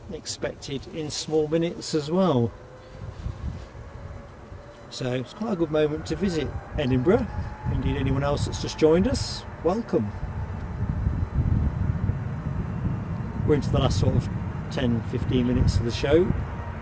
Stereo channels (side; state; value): both; identical; correlation 1.00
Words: expected in small minutes as well. So it's quite a good moment to visit Edinburgh. Indeed, anyone else that's just joined us, welcome. We're into the last sort of 10-15 minutes of the show.